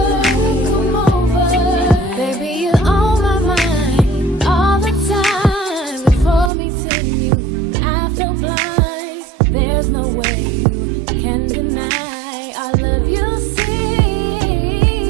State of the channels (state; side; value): drops out; left; at 6.5 s